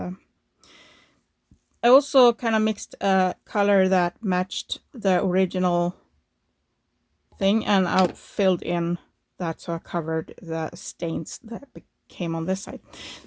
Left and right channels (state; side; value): identical; both; correlation 1.00